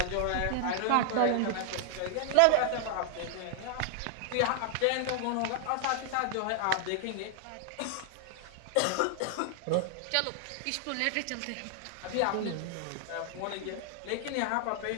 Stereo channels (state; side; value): different; both; correlation 0.00